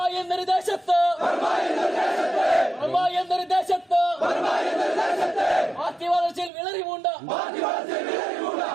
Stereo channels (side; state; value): left; drops out; at 6.5 s